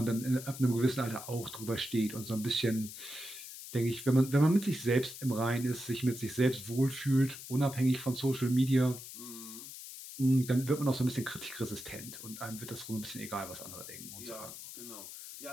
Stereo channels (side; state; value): left; noise; hiss, 12 dB below the sound